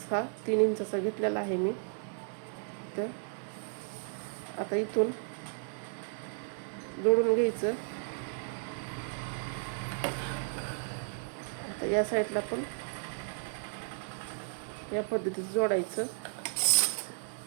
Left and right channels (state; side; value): silent; left; digital silence